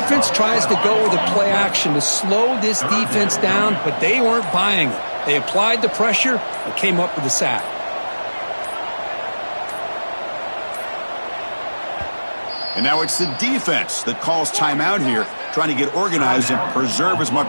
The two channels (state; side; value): inverted; both; correlation -1.00